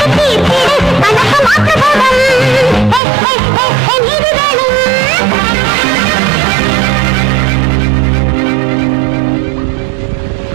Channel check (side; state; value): left; drops out; at 3.0 s